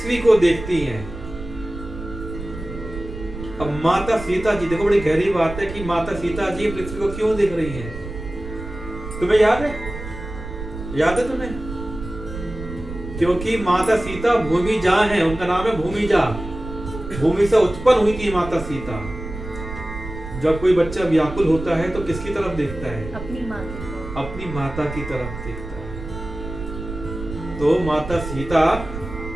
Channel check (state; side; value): noise; right; rumble, 10 dB below the sound